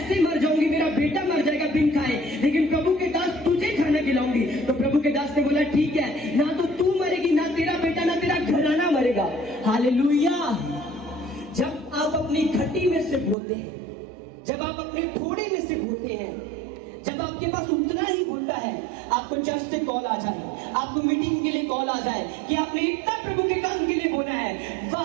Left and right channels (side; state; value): left; drops out; at 13.4 s